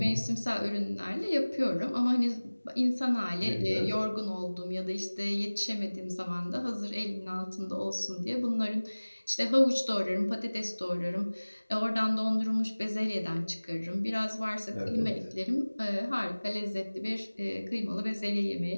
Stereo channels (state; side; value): inverted; both; correlation -1.00